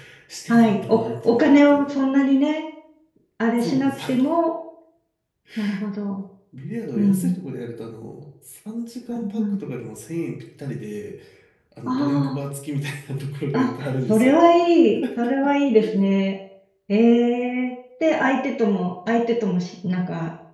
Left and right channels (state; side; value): identical; both; correlation 1.00